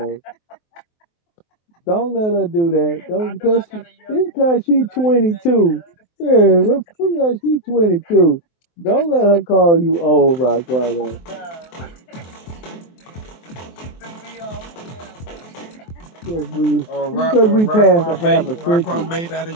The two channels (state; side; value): late; right; 23 ms